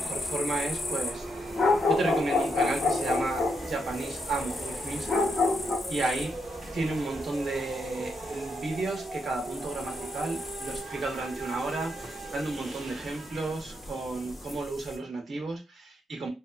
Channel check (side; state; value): both; normal; correlation 0.80